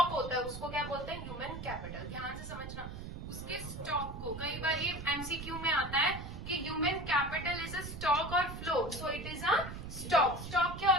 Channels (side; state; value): right; noise; rumble, 9 dB below the sound